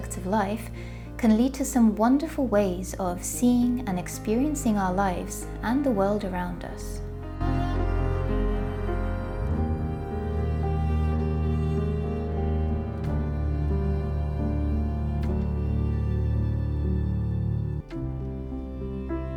of life can lead to some wonderful ways of seeing and experiencing our lives and the world around us.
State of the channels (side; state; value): both; identical; correlation 1.00